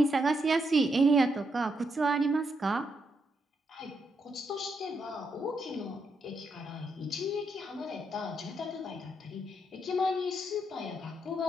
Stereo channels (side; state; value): both; normal; correlation 0.80